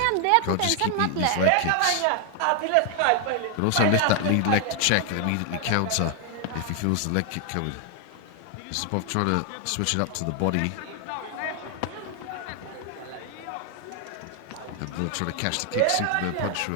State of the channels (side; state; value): both; different; correlation 0.00